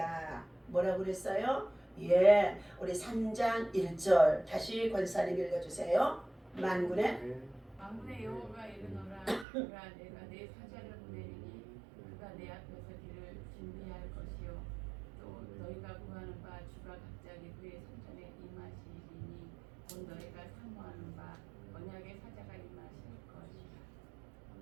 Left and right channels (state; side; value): drops out; left; at 9.5 s